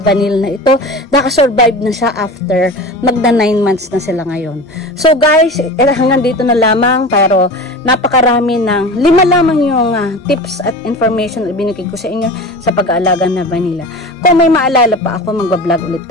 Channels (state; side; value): normal; both; correlation 0.33